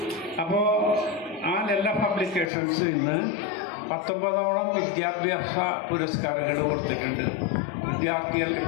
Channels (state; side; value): drops out; right; at 2.5 s